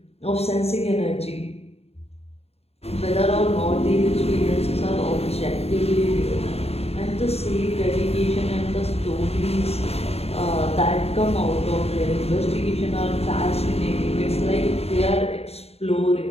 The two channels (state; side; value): late; right; 0.30 ms